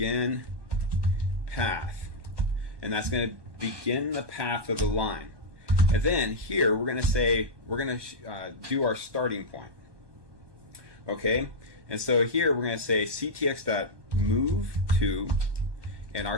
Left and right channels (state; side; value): late; left; 1.2 ms